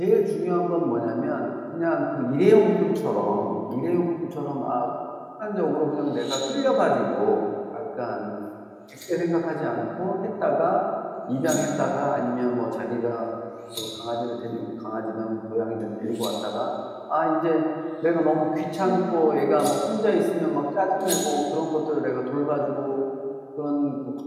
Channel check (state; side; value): identical; both; correlation 1.00